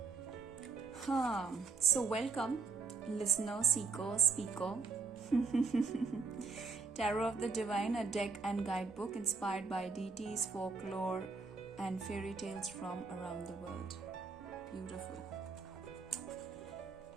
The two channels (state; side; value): quieter; left; 4.6 dB